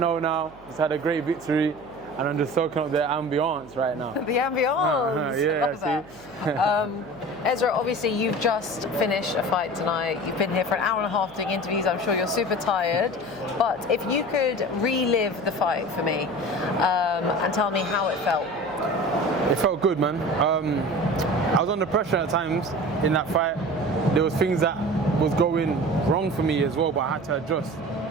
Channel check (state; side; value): noise; right; hum, 23 dB below the sound